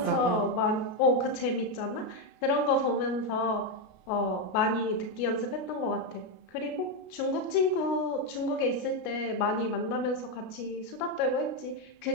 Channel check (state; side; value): late; right; 33 ms